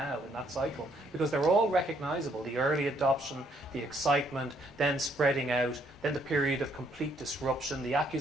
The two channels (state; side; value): normal; both; correlation 0.69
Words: in that cycle? Because they're all recognizable: the early adoption, the excitement, then spreading out, then the period of complete disruption, the